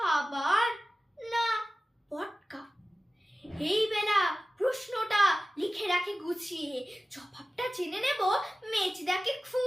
না পটকা। এই বেলা প্রশ্নটা লিখে রাখি গুছিয়ে, জবাবটা জেনে নেব মেজদাকে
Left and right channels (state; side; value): normal; both; correlation 0.96